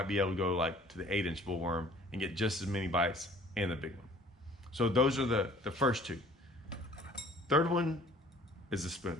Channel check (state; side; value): normal; both; correlation 0.52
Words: be able to go like to the 8-inch bullworm and get just as many bites and the big one. So those are the first 2. Third one is the